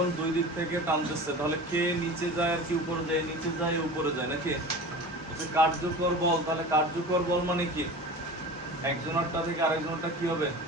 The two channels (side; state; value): both; normal; correlation 0.35